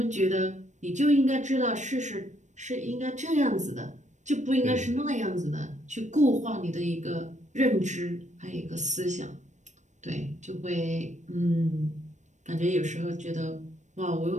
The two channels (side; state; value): left; late; 0.35 ms